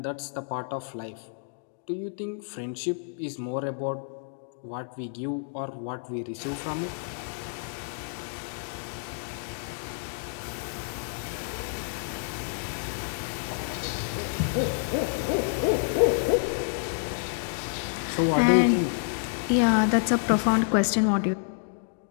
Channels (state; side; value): silent; right; digital silence